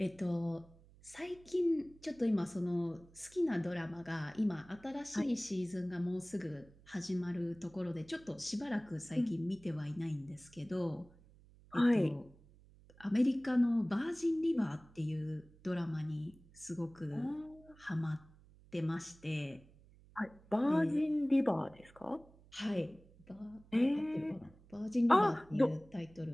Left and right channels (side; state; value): right; noise; hum, 25 dB below the sound